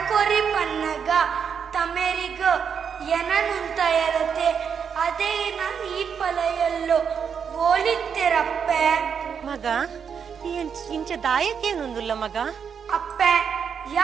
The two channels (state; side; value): quieter; left; 7.0 dB